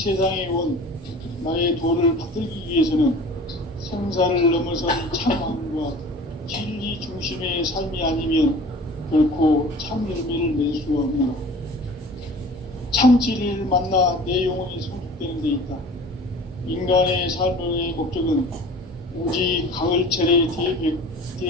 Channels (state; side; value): normal; both; correlation 0.43